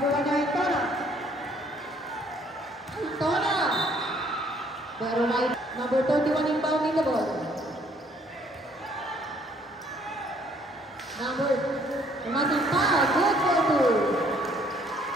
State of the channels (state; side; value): normal; both; correlation 0.63